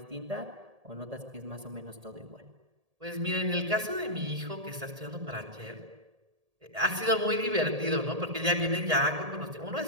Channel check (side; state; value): left; late; 1.8 ms